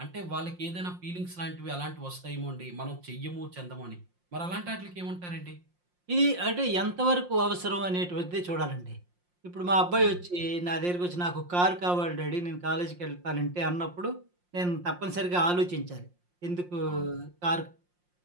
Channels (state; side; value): late; left; 5.6 ms